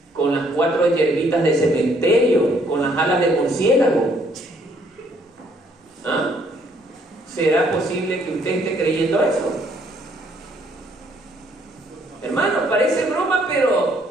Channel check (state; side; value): normal; both; correlation 0.66